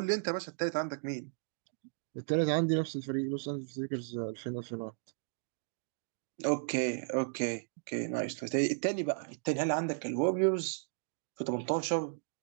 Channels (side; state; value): left; silent; digital silence